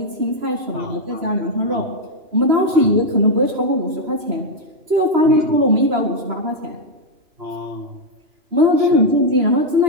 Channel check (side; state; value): left; late; 3.0 ms